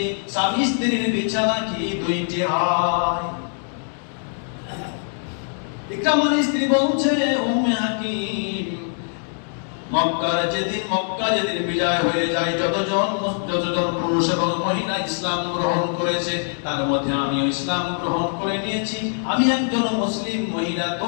স্বামী স্ত্রীর বিছানা কি দুইটি হয়? ইকরামার স্ত্রী বলছে, উম্মে হাকিম, মক্কা যেদিন বিজয় হয়ে যায়, যতজন পুরুষ এবং মহিলা ইসলাম গ্রহণ করেছে তার মধ্যে আমিও ইসলাম গ্রহণ করে নিয়েছি। আমি একজন মুসলিম মহিলা,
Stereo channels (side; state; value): right; silent; 60 dB below the other